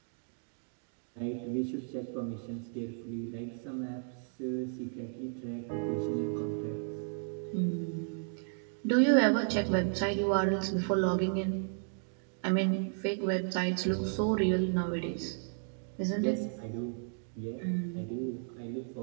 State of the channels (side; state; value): left; silent; digital silence